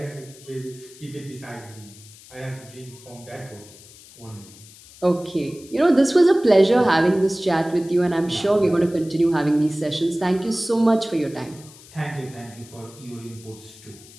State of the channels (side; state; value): left; noise; hiss, 21 dB below the sound